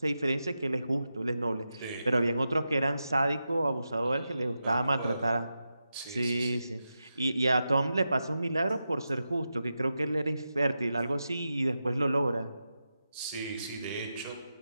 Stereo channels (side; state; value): both; inverted; correlation -0.89